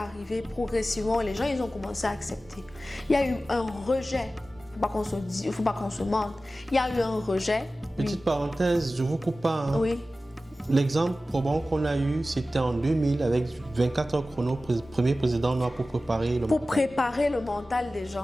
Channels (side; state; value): both; normal; correlation 0.95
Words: progressivement et les gens, ils ont commencé à accepter. Il y a eu un rejet, il ne faut pas qu'on se mente, il y a eu un rejet. Petite parenthèse, je vous coupe pas. Hein. Oui. L'exemple probant qu'on a eu, c'était en 2000 avec 24 heures chrono, premier président noir pour préparer le mental. Pour préparer le mental des